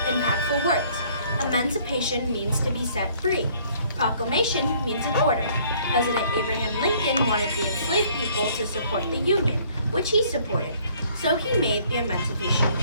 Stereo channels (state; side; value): inverted; both; correlation -0.60